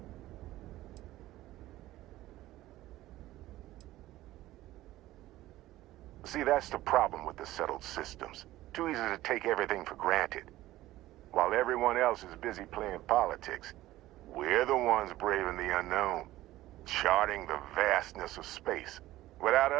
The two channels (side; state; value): left; quieter; 15.9 dB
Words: See, that's the problem with the settled systems. Too easy to take everything for granted. While everyone else is busy playing politics, we're the ones braving the unknown, charting the vastness of space. Without